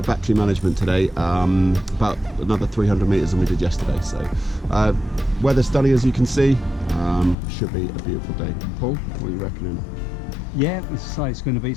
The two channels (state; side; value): drops out; right; at 7.4 s